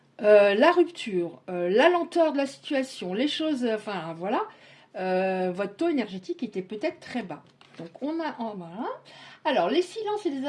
la rupture, la lenteur de la situation, les choses, enfin voilà, votre taux énergétique était peut-être très bas. Donc on a, voilà. Alors les silences et les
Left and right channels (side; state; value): both; identical; correlation 1.00